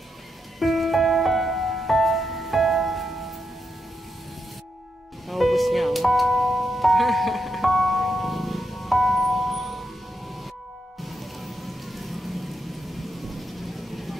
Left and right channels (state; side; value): normal; both; correlation 0.83